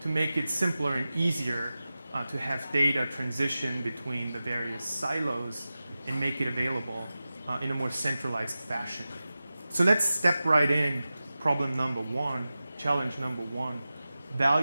to make it simpler and easier to have data transition between the various silos and make it available in a more centralized fashion. So let's step right in. Problem number 1, challenge number 1,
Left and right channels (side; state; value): both; inverted; correlation -0.95